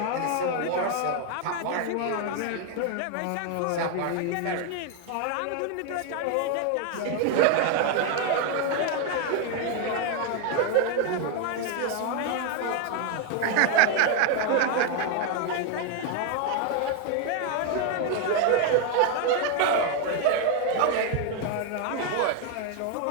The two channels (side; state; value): both; different; correlation 0.01